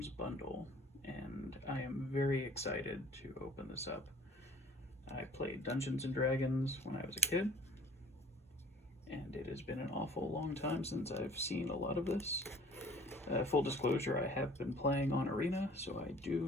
bundle, and I am very excited to open this up. I played Dungeons & Dragons when I was a kid, and it has been an awful long time since I've seen a lot of this. Full disclosure, I have been playing on Arena, so I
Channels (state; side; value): normal; both; correlation 0.50